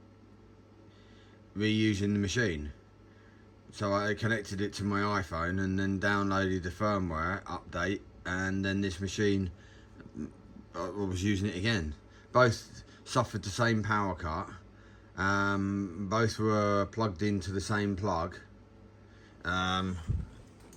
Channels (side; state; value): both; identical; correlation 1.00